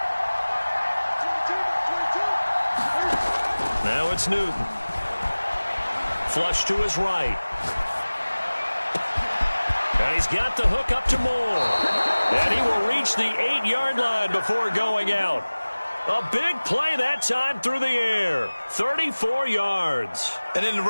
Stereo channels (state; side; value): inverted; both; correlation -1.00